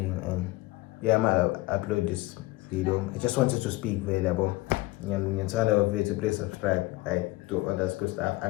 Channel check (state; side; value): quieter; right; 20.3 dB